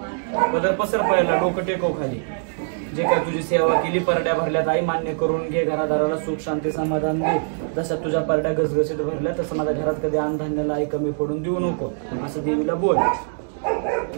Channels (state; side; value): silent; left; digital silence